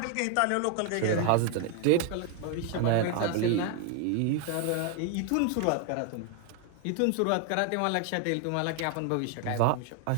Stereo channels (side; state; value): both; different; correlation 0.00